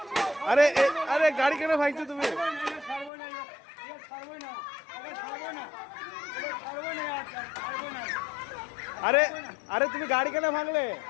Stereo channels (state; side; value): drops out; right; at 3.1 s